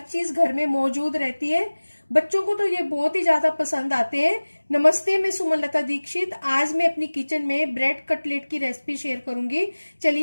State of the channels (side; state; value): both; inverted; correlation -1.00